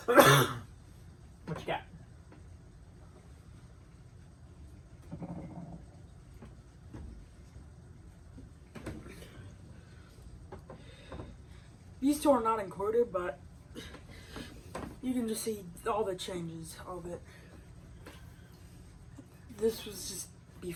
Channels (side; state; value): both; identical; correlation 1.00